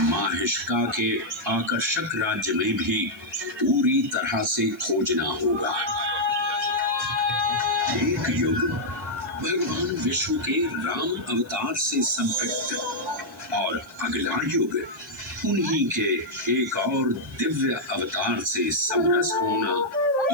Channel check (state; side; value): noise; left; hiss, 28 dB below the sound